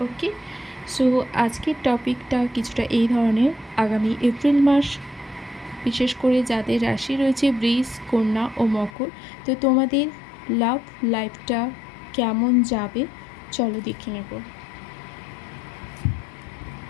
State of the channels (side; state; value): right; drops out; at 8.9 s